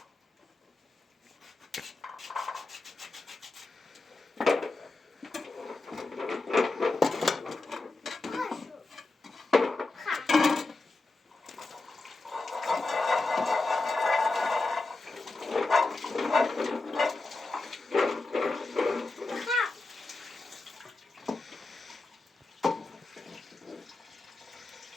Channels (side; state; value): right; quieter; 3.4 dB